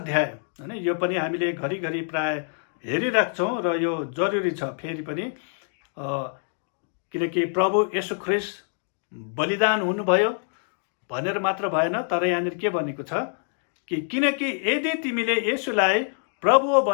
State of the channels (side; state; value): right; silent; digital silence